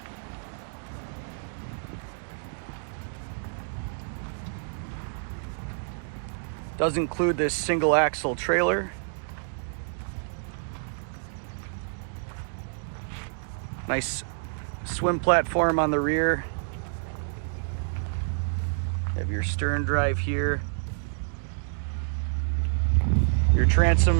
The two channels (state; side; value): silent; left; digital silence